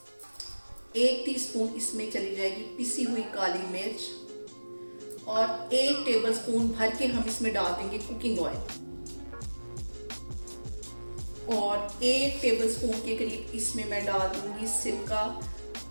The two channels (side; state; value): both; inverted; correlation -1.00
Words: 1 टीस्पून इसमें चली जाएगी पिसी हुई काली मिर्च और 1 टेबलस्पून भर के हम इसमें डाल देंगे कुकिंग ऑयल और 1 टेबलस्पून के करीब इसमें मैं डाल दूंगी सिरका